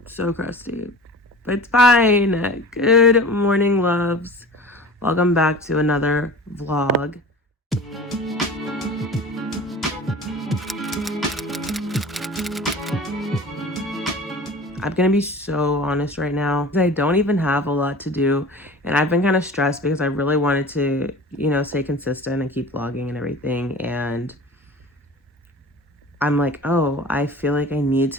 so crusty, but it's fine. Good morning, loves. Welcome back to another vlog. I'm gonna be so honest right now. I don't even have a lot to do, and I've been kind of stressed because I really wanted to, stay consistent and keep vlogging and everything. And I'm like, oh, I feel like I need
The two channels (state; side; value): normal; both; correlation 0.38